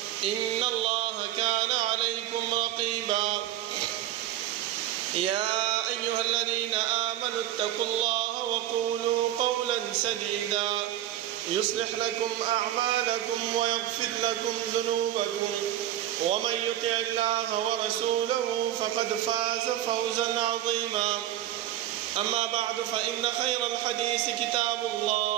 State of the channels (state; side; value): quieter; left; 12.7 dB